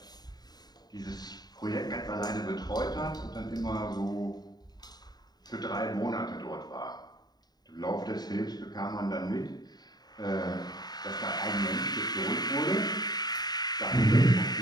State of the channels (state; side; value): late; right; 0.20 ms